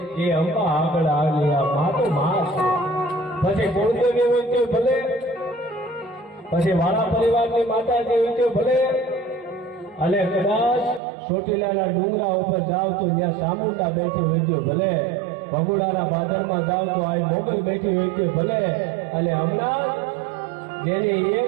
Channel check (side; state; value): left; drops out; at 11.0 s